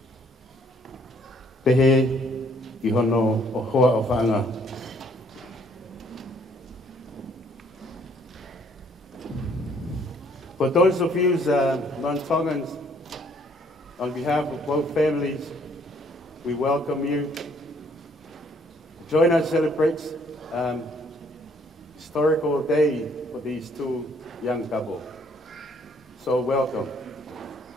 pehe i hono o hoa o whanga. For those of you non-Tongans, on behalf of both families, we welcome you. Join us celebrate historical day for these two young couples. So welcome.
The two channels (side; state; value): both; normal; correlation 0.64